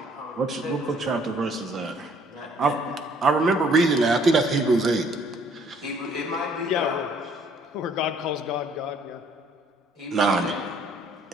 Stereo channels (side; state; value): both; normal; correlation 0.61